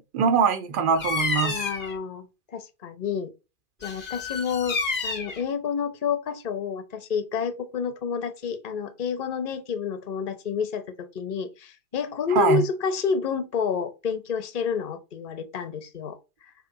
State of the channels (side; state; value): left; late; 2.4 ms